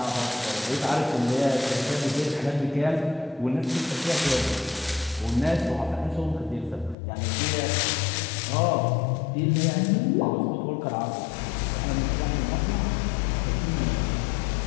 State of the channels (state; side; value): drops out; right; at 7.0 s